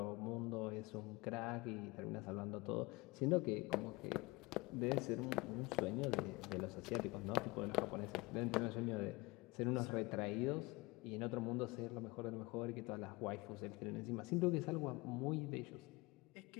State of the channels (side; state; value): right; quieter; 24.0 dB